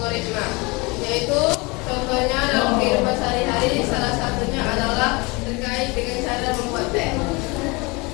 yaitu contohnya dalam kehidupan sehari-hari, salah satunya adalah terkait dengan cara membuat teh.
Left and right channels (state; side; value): quieter; right; 26.5 dB